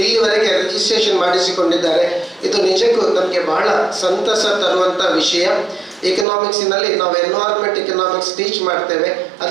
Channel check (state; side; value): drops out; left; at 6.2 s